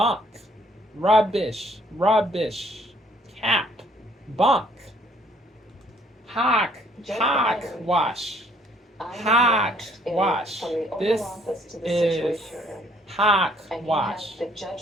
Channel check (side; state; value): both; normal; correlation 0.63